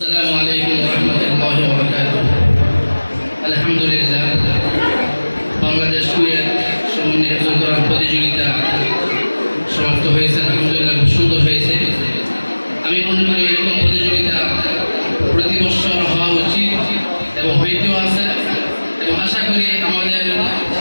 আসসালামু আলাইকুম ওয়া রাহমাতুল্লাহি ওয়া বারাকাতুহু। আলহামদুলিল্লাহ, বাংলাদেশ কুয়েত সমন্বয় হেফজুল কোরআন প্রতিযোগিতা সমাপ্ত হয়েছে। আলহামদুলিল্লাহ, খুব সুন্দর হয়েছে। আমি মনে করি এরকম প্রতিযোগিতা প্রতি বছর হওয়া উচিত এবং হইতেও আছে, এবং আশা করি আমাদের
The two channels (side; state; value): both; inverted; correlation -1.00